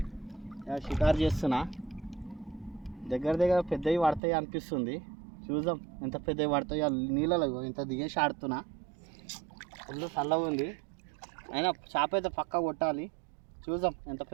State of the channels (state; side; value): drops out; left; at 4.2 s